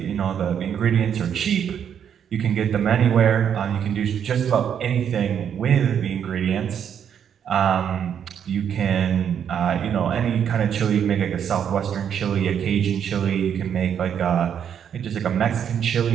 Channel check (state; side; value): quieter; left; 8.5 dB